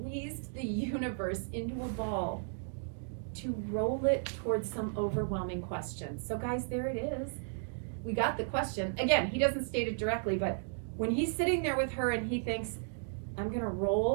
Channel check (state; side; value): silent; left; digital silence